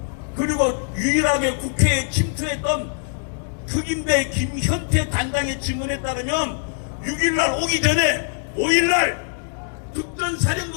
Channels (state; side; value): silent; right; digital silence